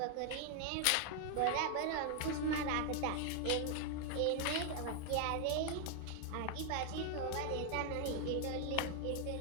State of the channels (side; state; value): both; different; correlation 0.00